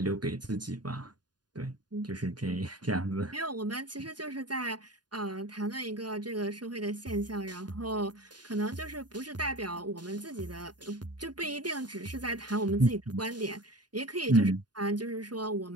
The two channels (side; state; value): left; late; 0.70 ms